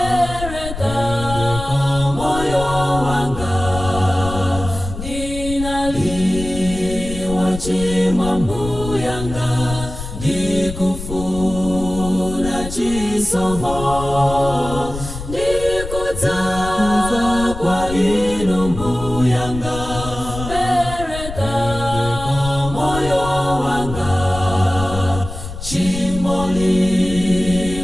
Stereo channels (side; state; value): left; noise; rumble, 9 dB below the sound